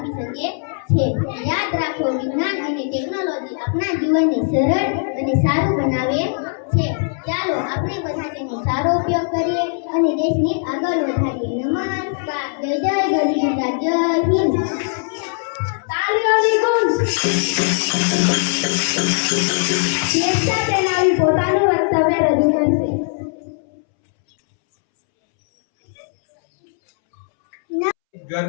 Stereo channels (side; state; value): right; silent; 66 dB below the other